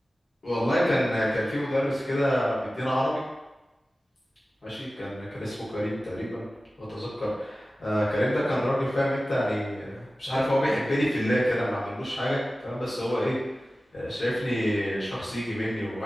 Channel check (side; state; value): both; normal; correlation 0.96